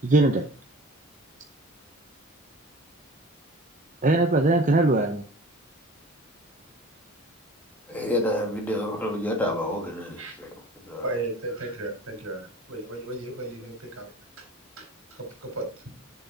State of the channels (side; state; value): both; normal; correlation 0.43